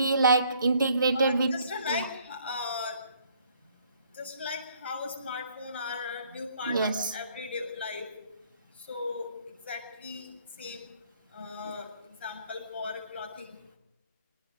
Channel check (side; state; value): both; inverted; correlation -0.63